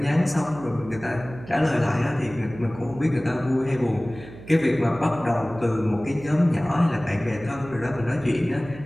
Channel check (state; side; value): noise; right; hum, 16 dB below the sound